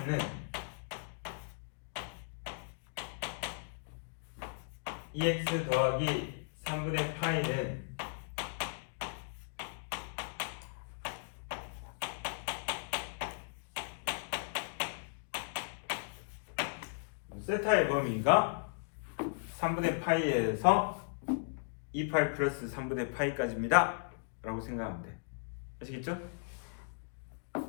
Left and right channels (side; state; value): right; silent; digital silence